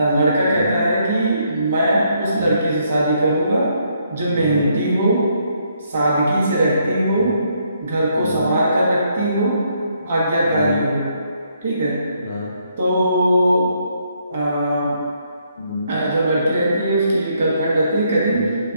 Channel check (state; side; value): inverted; both; correlation -0.73